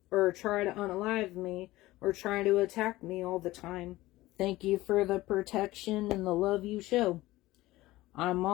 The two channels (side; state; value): right; quieter; 17.9 dB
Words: or try to unalive me, or try to attack me all the time. Thank you for the protection and the love you show. I'm